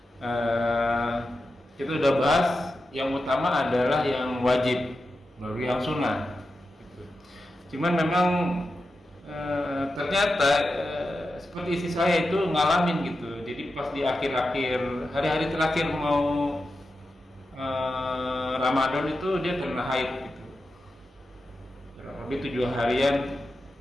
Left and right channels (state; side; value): normal; both; correlation 0.90